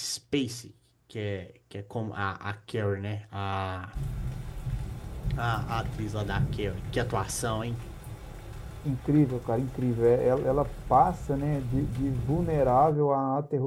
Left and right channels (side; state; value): both; identical; correlation 1.00